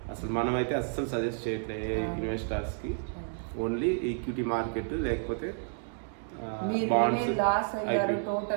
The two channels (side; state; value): left; silent; 57 dB below the other